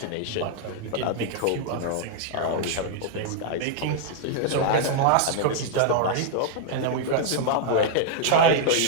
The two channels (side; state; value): both; different; correlation -0.01